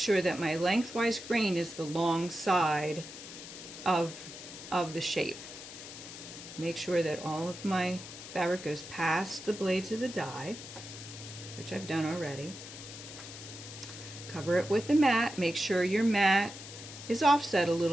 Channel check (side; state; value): left; noise; hiss, 13 dB below the sound